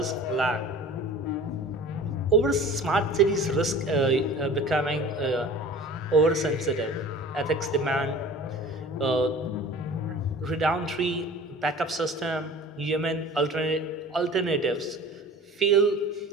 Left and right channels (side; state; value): both; normal; correlation 0.41